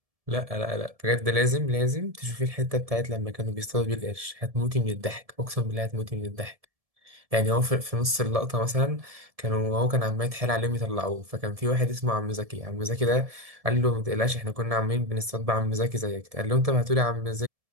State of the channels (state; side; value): late; left; 1.7 ms